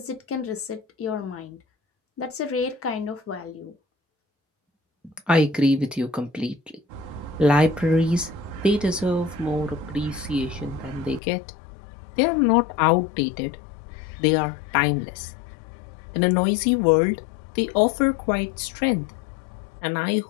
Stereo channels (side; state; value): right; drops out; at 11.2 s